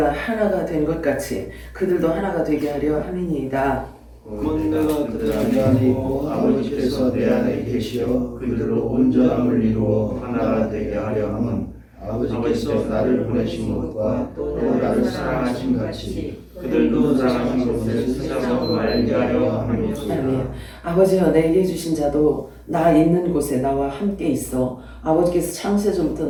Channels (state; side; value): identical; both; correlation 1.00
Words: 하나가 된 것 같이 그들도 하나가 되게 하려 함이니이다. 곧 내가 그들 안에 있고 아버지께서 내 안에 계시어 그들로 온전함을 이루어 하나가 되게 하려 함은 아버지께서 나를 보내신 것과 또 나를 사랑하신 같이 그들도 사랑하신 것을 세상으로 알게 하려 함이니라. 아멘. 아버지여 내게 주신 자도 나 있는 곳에 나와 함께 있어 아버지께서 창세전부터